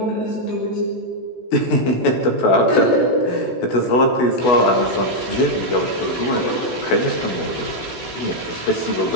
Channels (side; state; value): right; late; 16 ms